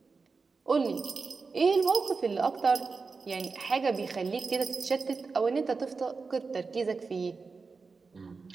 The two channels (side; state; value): left; quieter; 4.5 dB